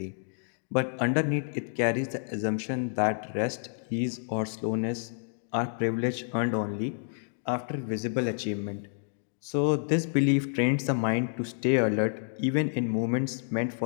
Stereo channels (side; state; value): right; silent; digital silence